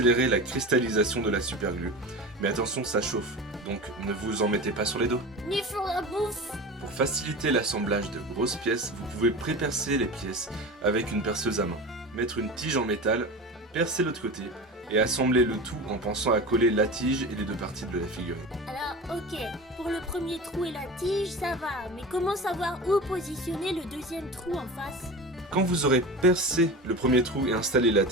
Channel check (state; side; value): normal; both; correlation 0.30